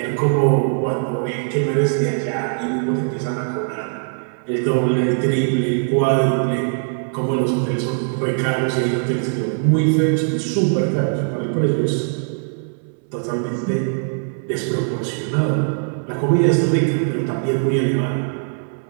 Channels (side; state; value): left; silent; 61 dB below the other